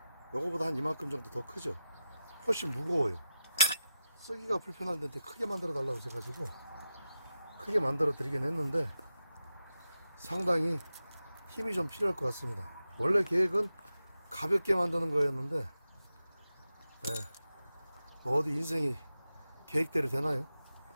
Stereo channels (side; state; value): both; inverted; correlation -0.90